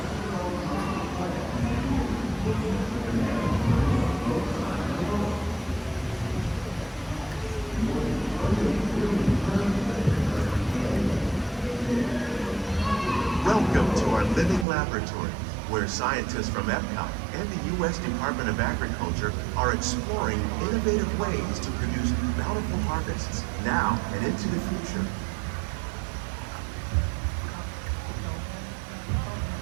Welcome to our living laboratory, where scientists from Epcot and the U.S. Department of Agriculture are exploring innovative ways to produce bountiful harvests now and into the future.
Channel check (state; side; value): drops out; left; at 14.7 s